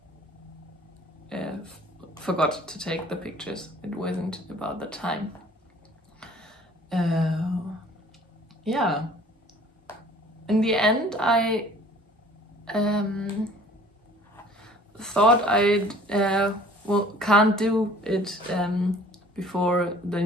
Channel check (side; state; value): both; normal; correlation 0.51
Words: forgot to take the pictures. It wasn't about the time. Yeah. In the end, I thought I'd can't do it before the